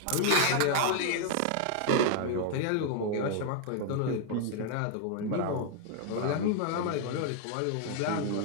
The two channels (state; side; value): different; both; correlation 0.00